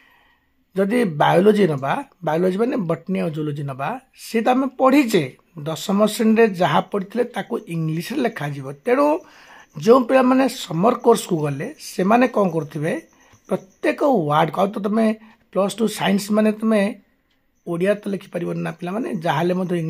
जदि बायोलोजी नबा बायोलोजी माने बटनी और जूलोजी नबा सी तो आम पढ़ीचे 10वीं श्रेणी जहाँ पढ़ी ताको इंग्लिश लिखा जीव। तेणु जो पिला माने समर कोर्स को गले से माने कौन करथिबे प्रत्येक वार्ड को तो तुम +2 साइंस माने तुम ओडिया तो लिखि परिबन ना पिला माने जहाले मधे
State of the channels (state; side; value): identical; both; correlation 1.00